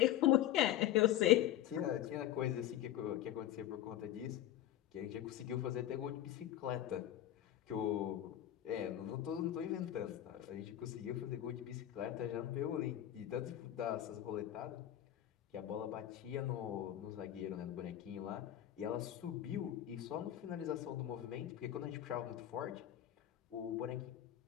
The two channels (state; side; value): quieter; right; 12.4 dB